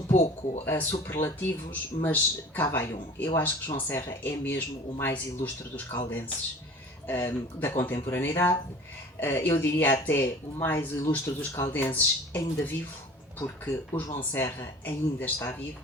pouco a superlativos, mas cá vai um. Eu acho que João Serra é mesmo o mais ilustre dos caldenses da contemporaneidade. Eu diria até o mais ilustre dos caldenses ainda vivo, porque o João Serra ainda está vivo,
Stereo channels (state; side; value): normal; both; correlation 0.44